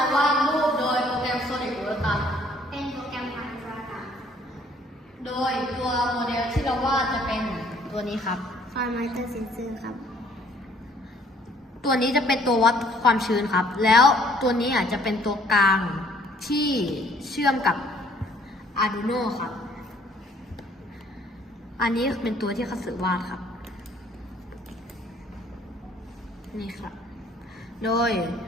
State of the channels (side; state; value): both; normal; correlation 0.60